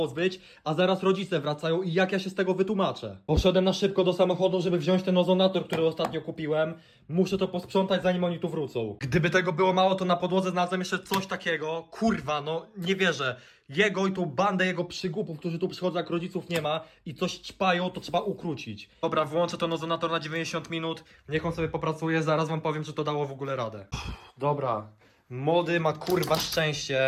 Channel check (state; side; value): identical; both; correlation 1.00